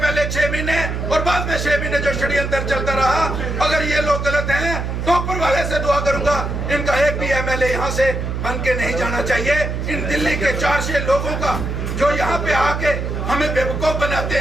6 महीने और बाद में 6 महीने जो षड्यंत्र चलता रहा, अगर ये लोग गलत हैं तो ऊपर वाले से दुआ करूंगा इनका एक भी MLA यहाँ से बन के नहीं जाना चाहिए। इन दिल्ली के 400 लोगों का जो यहाँ पे आके हमें बेवकूफ बनाते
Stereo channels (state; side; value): noise; right; hum, 3 dB below the sound